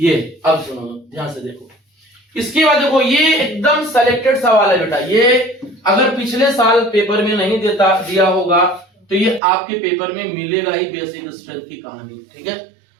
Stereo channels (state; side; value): drops out; left; at 9.4 s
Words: अब सुनो ध्यान से देखो, इसके बाद देखो ये एकदम सेलेक्टेड सवाल है बेटा। ये अगर पिछले साल पेपर में नहीं दिया होगा तो ये आपके पेपर में मिलेगा ही, बेसिक स्ट्रेंथ की कहानी। ठीक है,